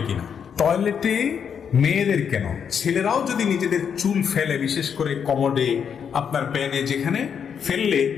কিনা? টয়লেটে মেয়েদের কেন, ছেলেরাও যদি নিজেদের চুল ফেলে, বিশেষ করে কমোডে, আপনার প্যানে, যেখানে ফেললে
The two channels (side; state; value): right; quieter; 7.4 dB